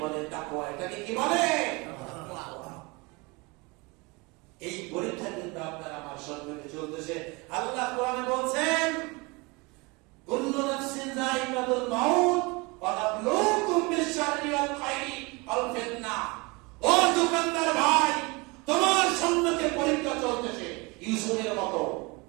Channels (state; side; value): quieter; left; 26.6 dB